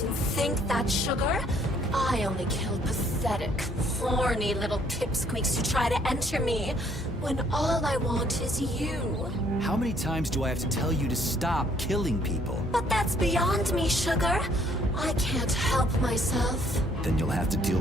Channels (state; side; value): normal; both; correlation 0.64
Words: think that, Sugar? I only kill pathetic, horny little pipsqueaks who try to enter me, when all I want is you. How many times do I have to tell you to stop killing people? But that's beyond me, Sugar. I can't help myself. Then you'll have to deal